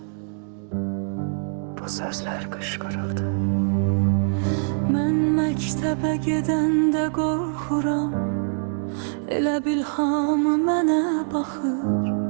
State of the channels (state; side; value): silent; left; digital silence